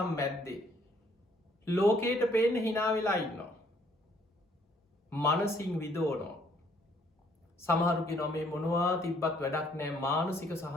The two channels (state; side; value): normal; both; correlation 0.64